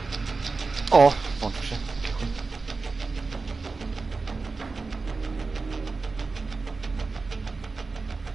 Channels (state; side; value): quieter; left; 4.1 dB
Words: O, włączył się.